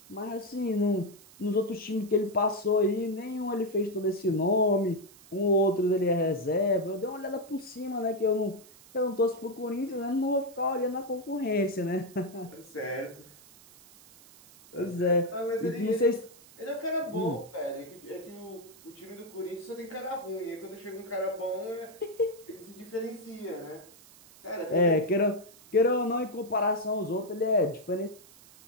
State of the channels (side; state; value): right; noise; hiss, 23 dB below the sound